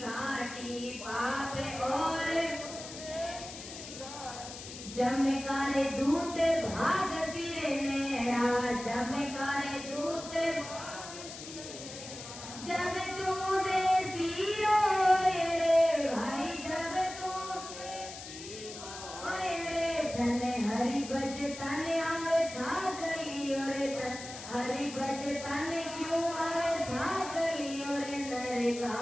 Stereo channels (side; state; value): left; noise; hiss, 12 dB below the sound